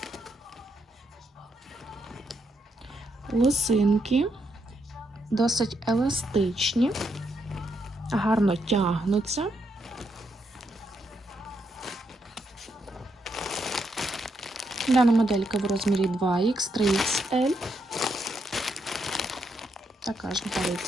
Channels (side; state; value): both; normal; correlation 0.79